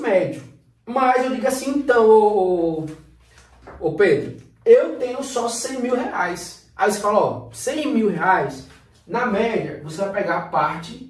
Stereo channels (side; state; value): both; identical; correlation 1.00